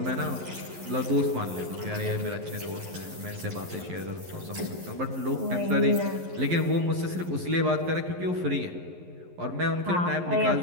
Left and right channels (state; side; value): late; left; 11 ms